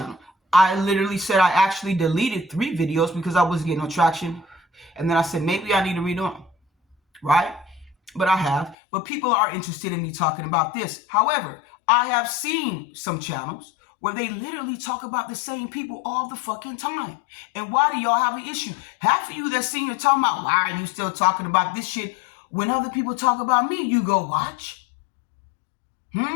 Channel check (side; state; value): right; drops out; at 8.8 s